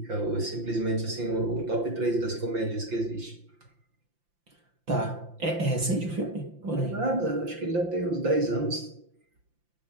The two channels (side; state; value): left; late; 5.8 ms